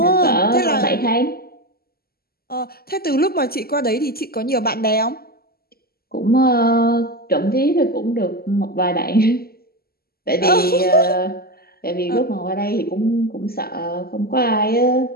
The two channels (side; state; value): right; late; 0.45 ms